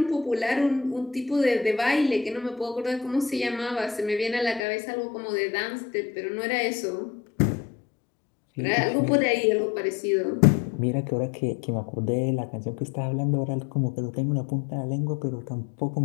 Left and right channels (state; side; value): drops out; right; at 4.6 s